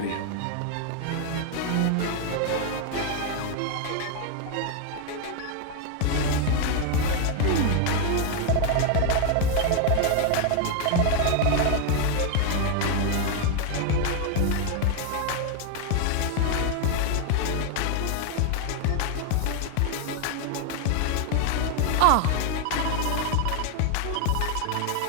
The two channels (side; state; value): both; different; correlation 0.01